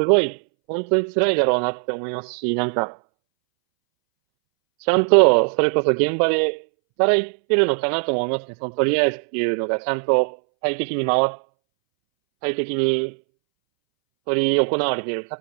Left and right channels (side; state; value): left; silent; 64 dB below the other